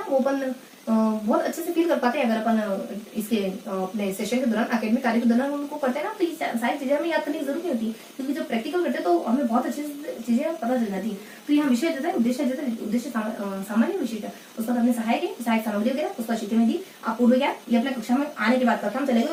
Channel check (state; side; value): identical; both; correlation 1.00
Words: वो अपन बहुत अच्छे से फील कर पाते हैं। अगर अपन इसके अपने सेशन के दौरान, एकेडमिक कार्य के दौरान उनको करते हैं ना, तो ये सारी चीजें हमें याद करने की जरूरत नहीं होती, क्योंकि जब प्रैक्टिकल करते हैं तो हमें बहुत अच्छे से चीजें पता चल जाती है। तो यहाँ विषय देता है, उद्देश्य सामान्य विशिष्ट। उसका अपने सहायक है, सहायक सामग्री वगैरह, उसका शिक्षण विधि, आप पूर्व ज्ञान, ये अपने कक्षा में आने के बाद कक्षा में चले